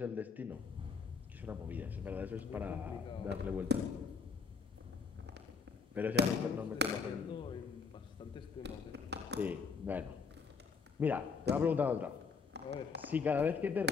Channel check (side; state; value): right; quieter; 5.4 dB